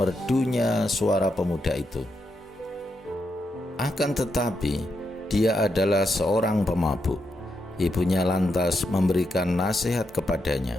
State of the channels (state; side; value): normal; both; correlation 0.82